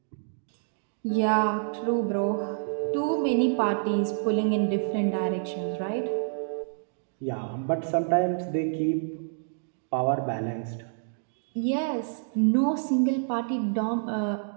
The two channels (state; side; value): silent; left; digital silence